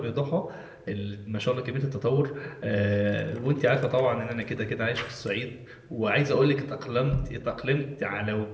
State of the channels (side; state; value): both; identical; correlation 1.00